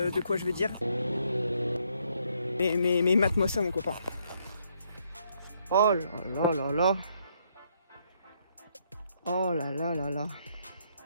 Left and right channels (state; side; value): inverted; both; correlation -0.72